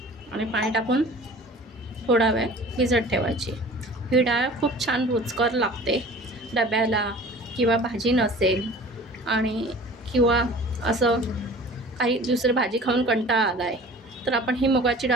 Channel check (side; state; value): both; normal; correlation 0.43